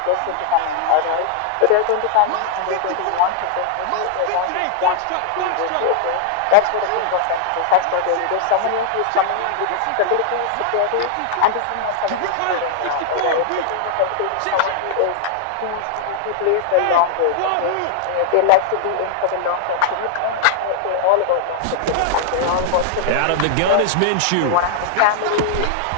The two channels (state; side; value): different; both; correlation -0.01